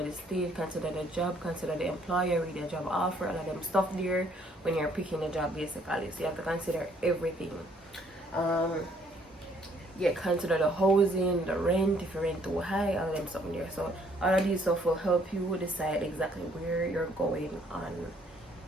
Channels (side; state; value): both; normal; correlation 0.64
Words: the state, consider the job, consider the employer, read the job offer, all of them stuff there when you're picking a job, basically. So you have to consider everything. Consider the housing, the rent, if you rent too high, all of them stuff there. So all of these stuff will help you decide exactly where you're going on